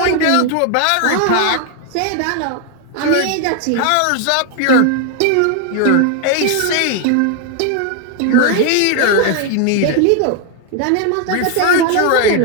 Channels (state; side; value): different; both; correlation 0.01